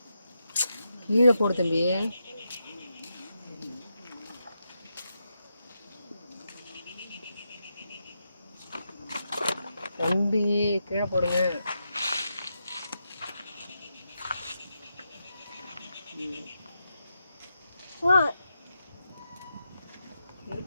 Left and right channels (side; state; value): both; inverted; correlation -0.85